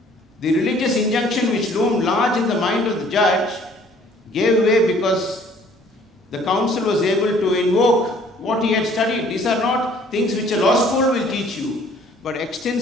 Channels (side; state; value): both; normal; correlation 0.57